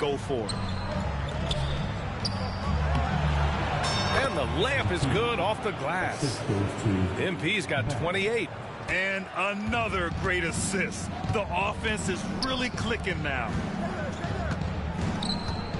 for it. And the layup is good off the glass. MP's got 28. And another great assist. The offense is really clicking now.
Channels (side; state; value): both; identical; correlation 1.00